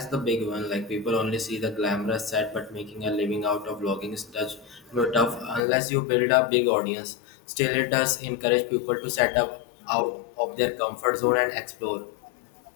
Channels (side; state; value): right; drops out; at 5.6 s